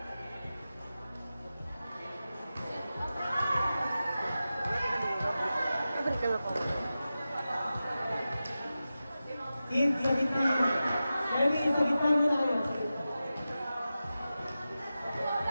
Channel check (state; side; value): inverted; both; correlation -0.93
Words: Kids, sa gitna. Erwin, sa gitna muna kayo.